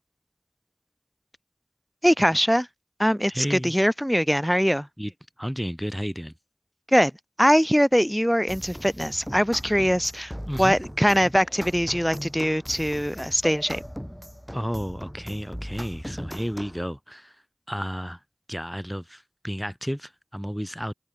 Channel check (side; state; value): both; identical; correlation 1.00